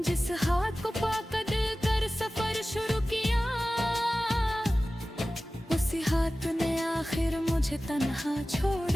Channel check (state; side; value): normal; both; correlation 0.96